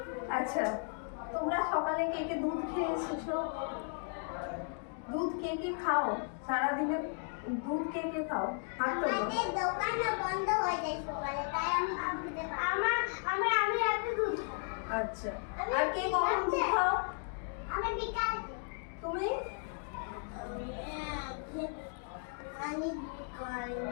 আচ্ছা, তোমরা সকালে কে কে দুধ খেয়ে এসেছো? দুধ কে কে খাও? সারাদিনে দুধ কে কে খাও? হাত তোলো। আমাদের দোকান বন্ধ হয়ে যায় সকালে, তাই আমি রাতে দুধ খাই। আচ্ছা, আর কে কখন দুধ খাও? আমি বিকালে। তুমি? আমি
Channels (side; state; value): right; silent; 54 dB below the other